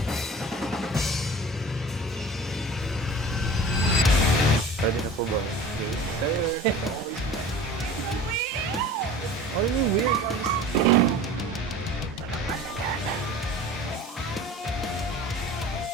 Ready na po ba? Yes, sir. What do you mean weird?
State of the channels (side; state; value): both; normal; correlation 0.40